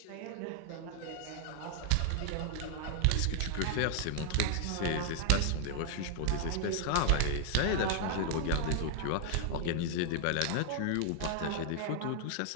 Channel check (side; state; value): both; different; correlation 0.00